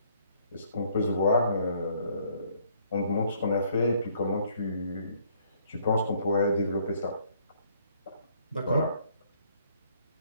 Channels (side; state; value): both; inverted; correlation -0.64